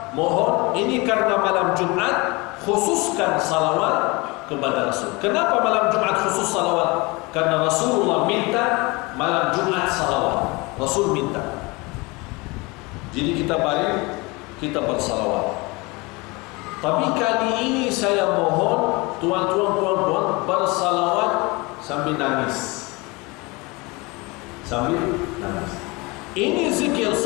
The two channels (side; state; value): right; quieter; 25.4 dB